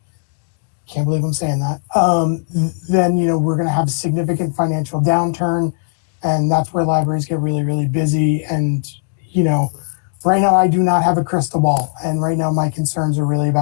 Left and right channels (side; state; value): right; silent; 63 dB below the other